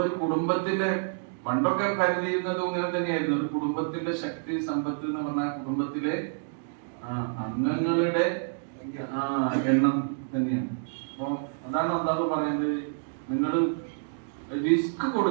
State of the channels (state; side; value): silent; left; digital silence